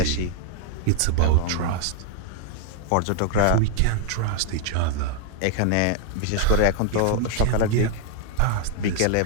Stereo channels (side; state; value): both; different; correlation 0.00